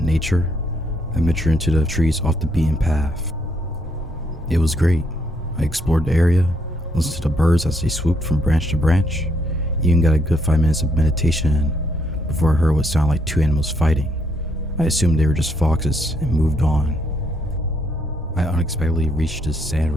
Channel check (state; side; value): normal; both; correlation 0.73